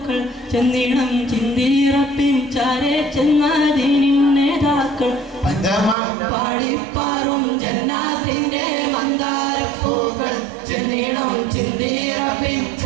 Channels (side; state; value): left; drops out; at 6.0 s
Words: ചെന്നിടം ചിന്തിറപ്പിൻ ചാരെ ചെന്നാദീനിൻ നേതാക്കൾ പഞ്ചമം പാടിപ്പാറും ജന്നാത്തിന്റെ മന്ദാരപ്പൂക്കൾ ചെന്നിടം ചിന്തിറപ്പിൻ